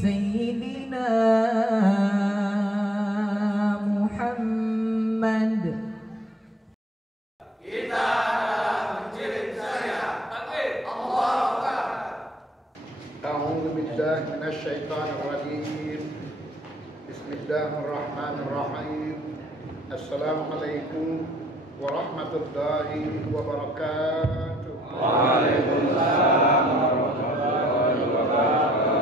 Muhammad. Kita mengirim saya. Takbir. Allahu Akbar. A'udzu billahi minasyaitonir rajim. Bismillahirrahmanirrahim. Assalamualaikum warahmatullahi wabarakatuh. Waalaikumsalam warahmatullahi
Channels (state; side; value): normal; both; correlation 0.63